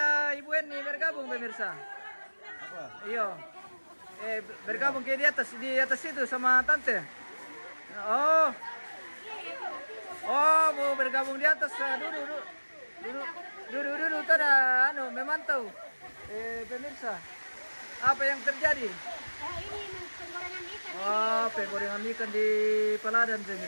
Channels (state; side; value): inverted; both; correlation -1.00